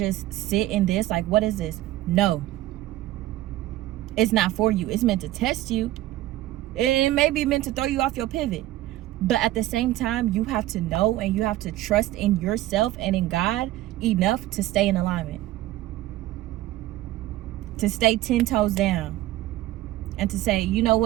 sit in this? Like, what is this? No, it's not for you. It's meant to test you. It may be meant to throw you off your pivot. But at the same time, you have to know and you have to trust in yourself and in God enough to stay in alignment, to stay 10 toes down, and to say, you know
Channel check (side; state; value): left; quieter; 15.4 dB